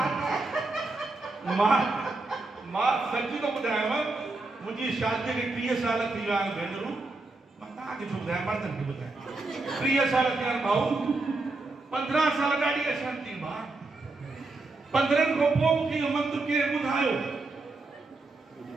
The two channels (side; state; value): left; quieter; 3.3 dB